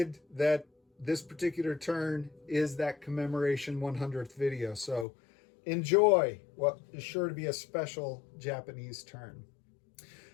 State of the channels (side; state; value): right; drops out; at 5.1 s